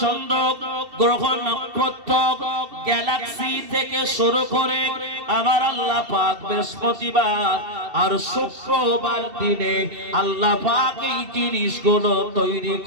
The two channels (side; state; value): left; late; 2.7 ms